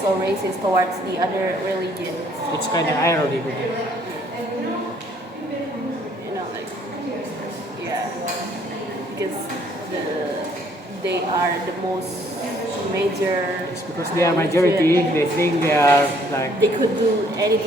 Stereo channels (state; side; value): normal; both; correlation 0.63